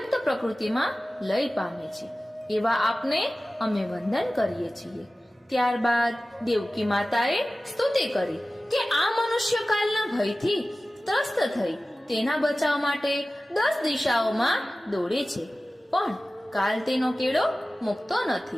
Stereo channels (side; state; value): both; normal; correlation 0.96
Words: પ્રકૃતિમાં લય પામે છે. એવા આપને અમે વંદન કરીએ છીએ. ત્યારબાદ દેવકી માતાએ સ્તુતિ કરી કે આ મનુષ્ય કાલના ભયથી ત્રસ્ત થઈ તેના બચાવ માટે 10 દિશાઓમાં દોડે છે, પણ કાલ તેનો કેડો મુકતો